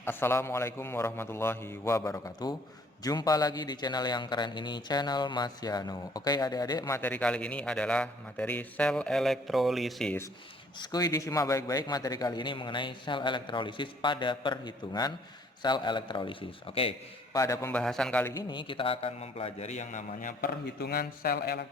Assalamualaikum warahmatullahi wabarakatuh. Jumpa lagi di channel yang keren ini, channel Mas Yano. Oke adik-adik, materi kali ini adalah materi sel elektrolisis. Skuy disimak baik-baik, materi kali ini mengenai sel elektrolisis pada perhitungan sel elektrolisis. Oke, pada pembahasan kali ini kita akan mempelajari yang namanya perhitungan sel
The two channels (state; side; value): normal; both; correlation 0.60